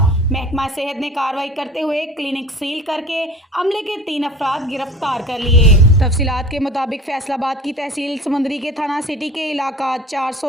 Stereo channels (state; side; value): normal; both; correlation 0.41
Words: महकमा सेहत ने कार्रवाई करते हुए क्लिनिक सील करके अमले के 3 अफराद गिरफ्तार कर लिए। तफसीलात के मुताबिक फैसलाबाद की तहसील समंदरी के थाना सिटी के इलाका